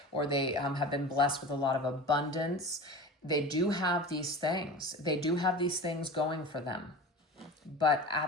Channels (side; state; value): both; normal; correlation 0.33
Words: or they have been blessed with a lot of abundance. They do have these things. They do have these things going for them. But